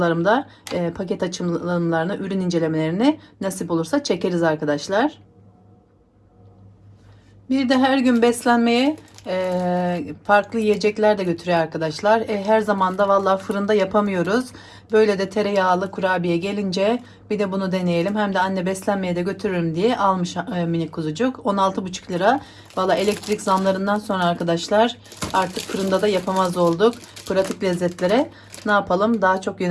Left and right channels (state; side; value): identical; both; correlation 1.00